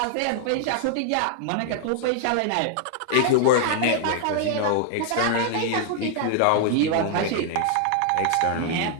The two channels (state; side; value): different; both; correlation 0.00